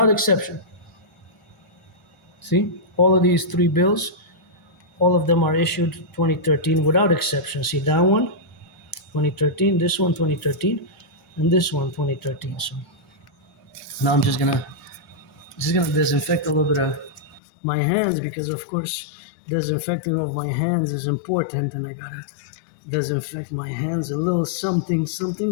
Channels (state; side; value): drops out; right; at 17.4 s